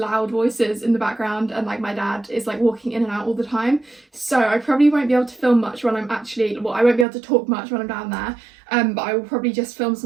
voices in the background, and like my dad is like walking in and out all the time. So I probably won't be able to film much when I'm I won't be able to talk much when I'm down there. But I will probably just film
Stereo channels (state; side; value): drops out; left; at 7.1 s